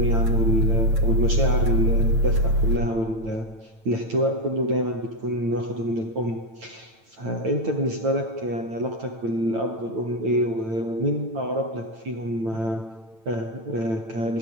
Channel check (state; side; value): late; left; 9.0 ms